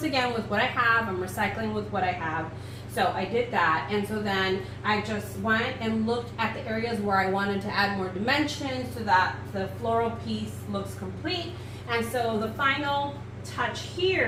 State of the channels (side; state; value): both; identical; correlation 1.00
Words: again with what I have. I'm recycling with what I have. So I did that, and so then I just went and looked at the areas where I wanted to add more dimension so that the floral piece looks complete. And so the final touch